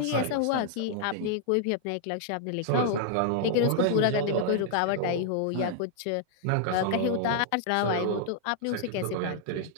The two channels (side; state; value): both; different; correlation -0.01